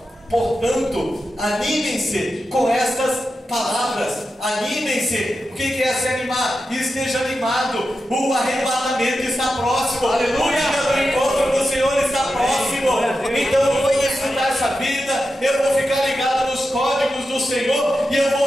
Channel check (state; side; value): normal; both; correlation 0.90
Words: portanto, animem-se com estas palavras. Animem-se. O que é se animar? Esteja animado. O arrebatamento está próximo. Aleluia. O dia do encontro do Senhor está próximo. Então eu vou desfrutar essa vida. Eu vou ficar ligado nos códigos do Senhor. E eu